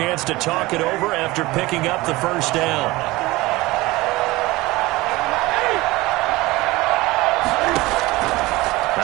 to talk it over after picking up the 1st down.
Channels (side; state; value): left; quieter; 20.3 dB